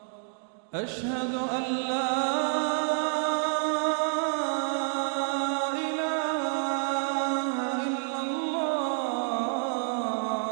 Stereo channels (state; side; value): silent; left; 59 dB below the other